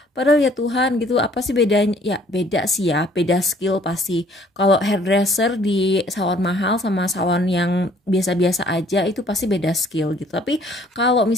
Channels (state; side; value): normal; both; correlation 0.59